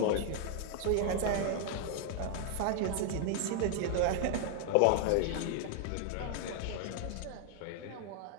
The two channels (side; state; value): both; different; correlation 0.00